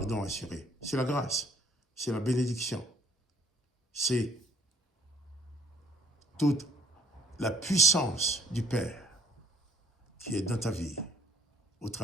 assuré, c'est la grâce, c'est la bénédiction, c'est toute la puissance du Père qui est dans ta vie au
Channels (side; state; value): both; normal; correlation 0.58